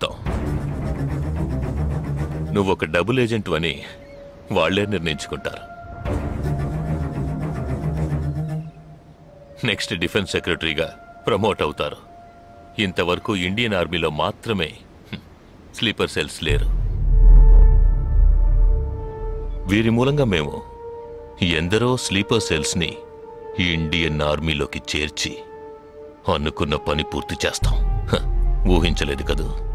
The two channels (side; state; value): both; identical; correlation 1.00